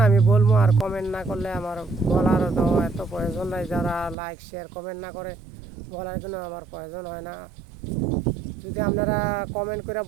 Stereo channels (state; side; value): drops out; left; at 4.2 s